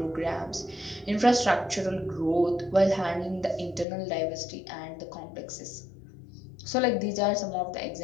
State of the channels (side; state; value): right; drops out; at 3.9 s